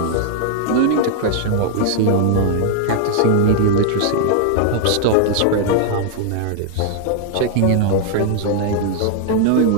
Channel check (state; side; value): different; both; correlation 0.00